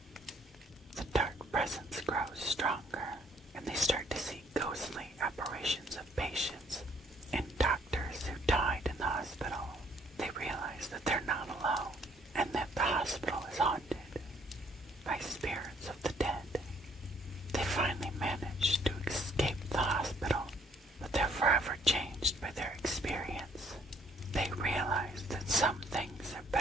The dark presence grows stronger, and they start to see ghostly apparitions of patients and doctors who died in the hospital. They realize that they're not alone, and that the hospital is haunted by spirits of the dead. They finally manage to escape the hospital, but they're forever changed by their experience. They realize that some things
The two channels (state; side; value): normal; both; correlation 0.64